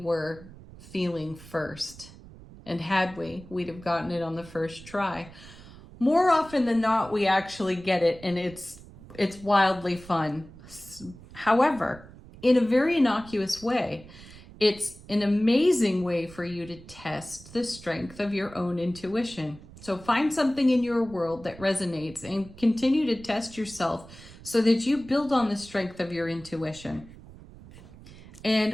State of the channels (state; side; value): noise; right; rumble, 19 dB below the sound